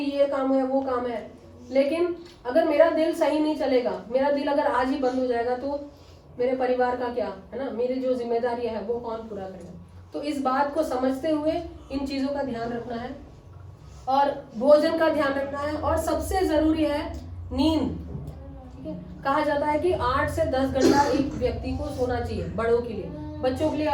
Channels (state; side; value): identical; both; correlation 1.00